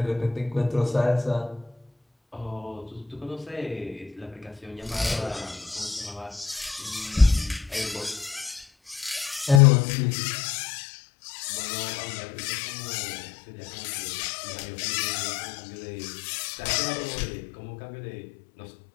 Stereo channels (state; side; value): drops out; right; at 9.6 s